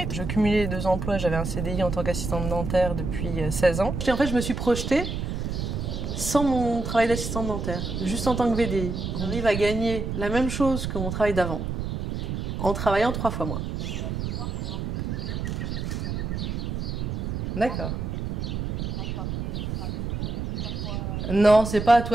Je cumulais les 2 emplois, j'avais un CDI en tant qu'assistante dentaire depuis 16 ans. Et en fait je me suis projetée sans mon travail d'assistante dentaire, juste en tant que VDI. On arrive à gagner la même chose que mon travail d'avant, en travaillant 3 fois moins. D'accord. Non, c'est pas à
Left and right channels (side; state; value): right; noise; rumble, 3 dB below the sound